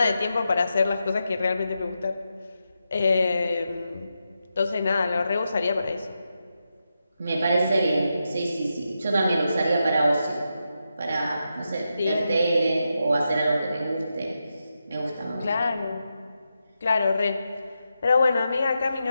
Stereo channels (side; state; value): both; inverted; correlation -0.87